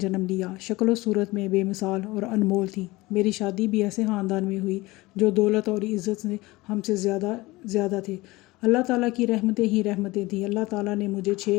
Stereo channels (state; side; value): quieter; right; 20.8 dB